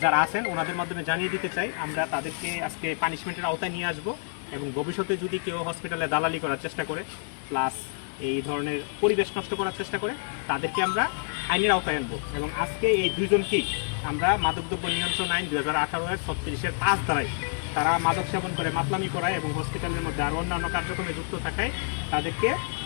যারা আছেন ওনাদের মাধ্যমে জানিয়ে দিতে চাই, আমরা তাদেরকে আজকে পানিশমেন্টের আওতায় নিয়ে আসবো এবং ভবিষ্যতে যদি কেউ হসপিটালে দালালি করার চেষ্টা করে প্লাস এই ধরনের পরিবেশ নষ্ট করার চেষ্টা করে, তাদেরকে আমরা আইনের আওতায় আনবো। এবং আজকে এই 2 জনকেই আমরা মাদকদ্রব্য নিয়ন্ত্রণ আইন 2018-এর 36-এর 5 ধারায় তারা মাদক সেবন করে মাতলামি করায় এবং হসপিটালের মধ্যে আরও অন্যান্য কার্যক্রমে যুক্ত থাকায় তাদেরকে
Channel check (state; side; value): silent; right; digital silence